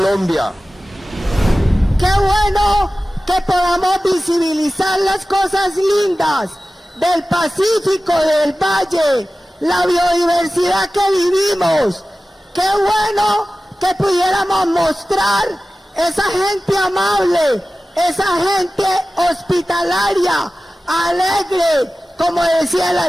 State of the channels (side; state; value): both; normal; correlation 0.96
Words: Qué bueno que podamos visibilizar las cosas lindas del Pacífico, del Valle, la biodiversidad que vivimos. Qué bueno que pudiéramos mostrar esa gente amable, esa gente hospitalaria, alegre, como decía el